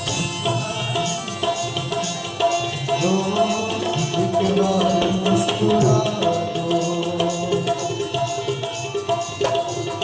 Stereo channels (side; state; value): both; identical; correlation 1.00